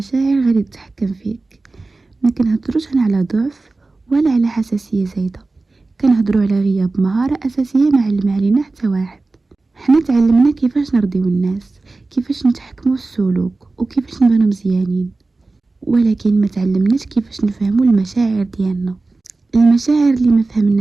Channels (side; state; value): left; quieter; 3.4 dB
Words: غادي تتحكم فيك. ما كنهضروش هنا على ضعف ولا على حساسيه زايده، كنهضروا على غياب مهاره اساسيه ما علم علينا حتى واحد. حنا تعلمنا كيفاش نرضيو الناس، كيفاش نتحكموا في السلوك وكيفاش نبانو مزيانين، ولكن ما تعلمناش كيفاش نفهموا المشاعر ديالنا. المشاعر اللي ما